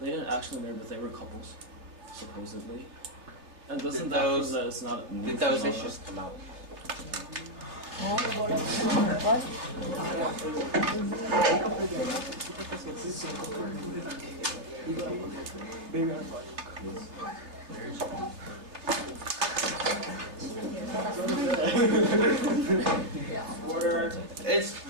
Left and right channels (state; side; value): late; left; 3.2 ms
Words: they didn't actually marry, but they were couples, supposedly. And doesn't Did that those- prove that it's not a new Did those phenomenon? issues come out? Order.